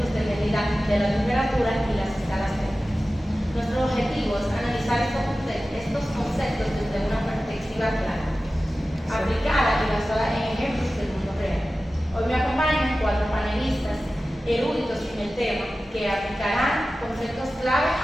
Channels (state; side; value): normal; both; correlation 0.95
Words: de medida de la temperatura y las escalas térmicas. Nuestro objetivo es analizar estos conceptos desde una perspectiva clara, aplicada y basada en ejemplos del mundo real. Hoy me acompañan 4 panelistas eruditos en el tema que aplicarán conceptos clave